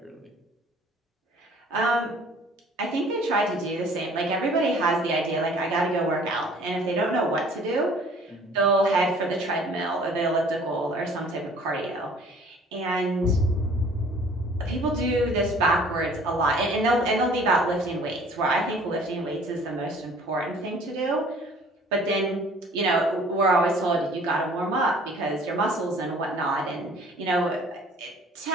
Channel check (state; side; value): normal; both; correlation 0.53